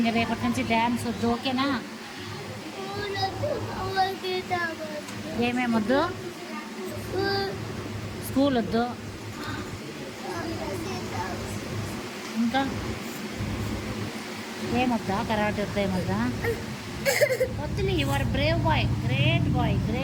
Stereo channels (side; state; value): both; identical; correlation 1.00